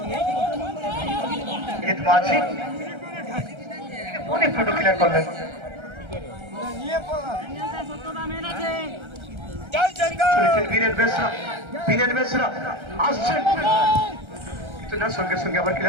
অনেক ফটো ক্লিয়ার করলেন। বীরেন বেসরা আসছেন কিন্তু না, সঙ্গে সঙ্গে আবার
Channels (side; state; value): left; late; 1.3 ms